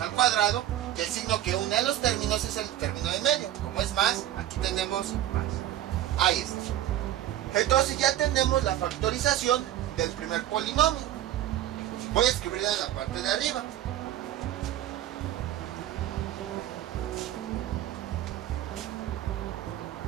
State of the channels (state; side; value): quieter; left; 12.7 dB